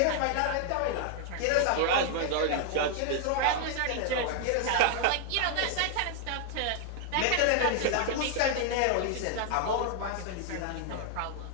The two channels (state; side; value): different; both; correlation 0.00